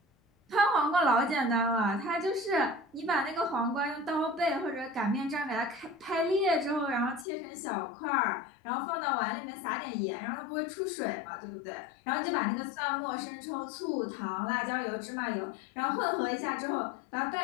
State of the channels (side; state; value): right; drops out; at 7.2 s